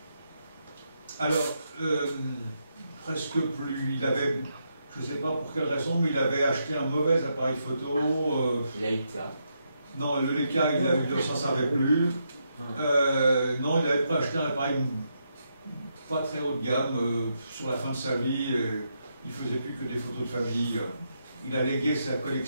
Alors, presque plus. Il avait, je ne sais pas pour quelle raison, mais il avait acheté un mauvais appareil photo. Leica. Non, le Leica, il ne s'en servait plus. Non, il n'avait pas acheté un appareil pas très haut de gamme sur la fin de sa vie. Il ne faisait plus que des photos de famille. Il a légué sa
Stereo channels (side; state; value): both; inverted; correlation -0.81